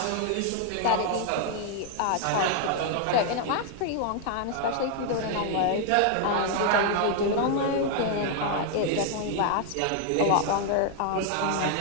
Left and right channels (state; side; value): different; both; correlation 0.00